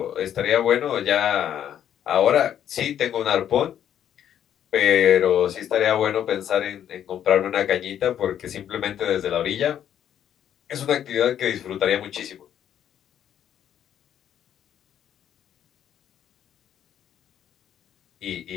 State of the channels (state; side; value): quieter; right; 10.0 dB